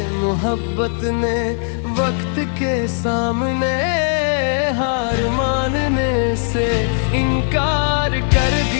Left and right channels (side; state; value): right; silent; 57 dB below the other